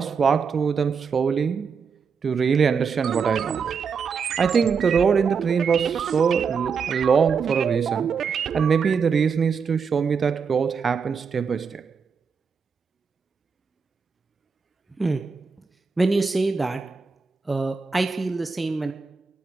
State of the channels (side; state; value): left; quieter; 5.8 dB